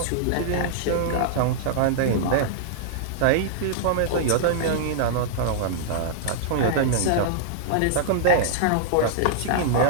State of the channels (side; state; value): both; different; correlation -0.01